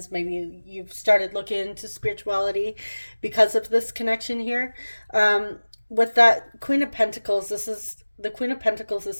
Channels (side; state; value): both; inverted; correlation -1.00